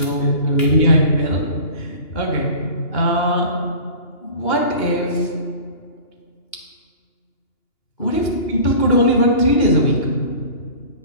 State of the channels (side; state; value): right; late; 2.8 ms